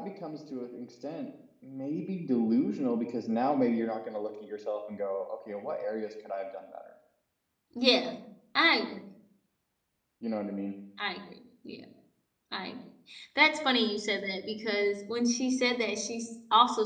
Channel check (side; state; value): both; identical; correlation 1.00